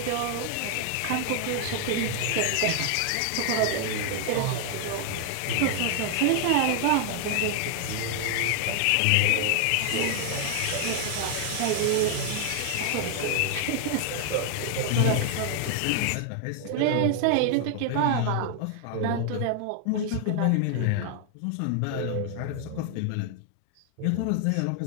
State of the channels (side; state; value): both; different; correlation 0.00